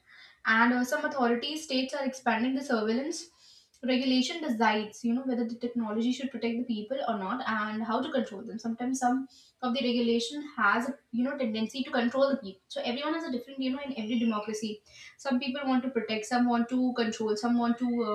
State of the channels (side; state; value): both; identical; correlation 1.00